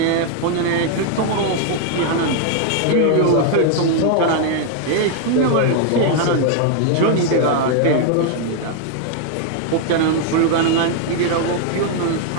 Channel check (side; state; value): both; different; correlation 0.00